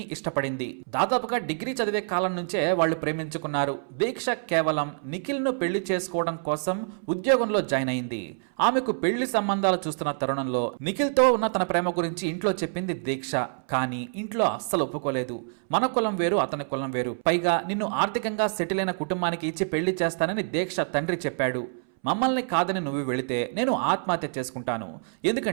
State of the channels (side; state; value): left; silent; 60 dB below the other